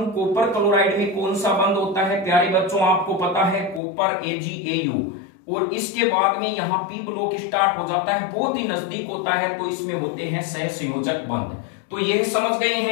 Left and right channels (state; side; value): drops out; right; at 3.8 s